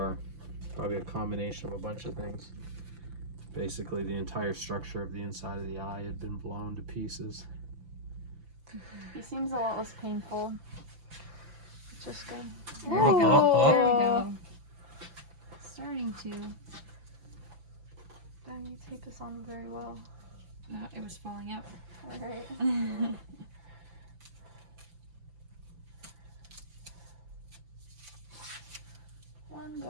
probably a combination of a bunch of things, basically the entire structure of the inside of the eye had been blown to pieces. He seems a lot less painful. It's just good. There we go. There we go. Starting to. Damn, you tape this on very well. It was falling out. Alright. One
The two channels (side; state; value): left; late; 5.9 ms